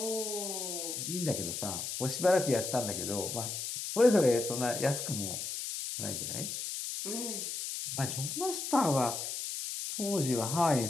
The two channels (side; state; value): left; noise; hiss, 4 dB below the sound